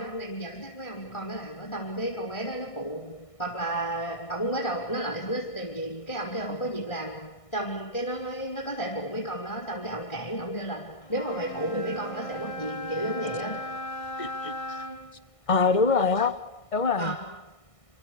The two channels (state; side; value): late; right; 1.6 ms